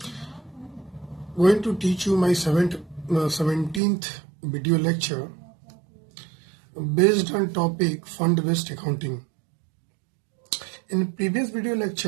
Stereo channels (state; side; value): drops out; left; at 3.8 s